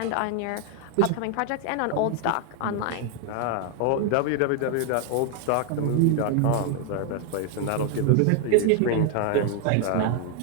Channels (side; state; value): both; different; correlation 0.01